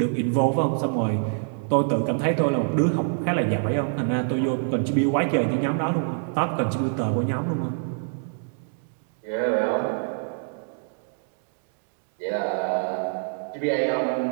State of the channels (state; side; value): silent; left; digital silence